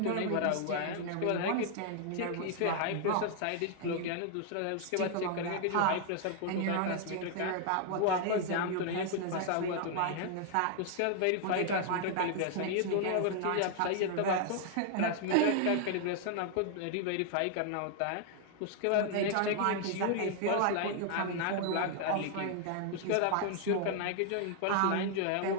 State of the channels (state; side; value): different; both; correlation 0.00